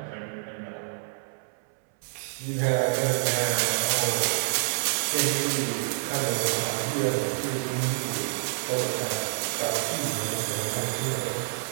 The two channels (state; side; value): silent; left; 60 dB below the other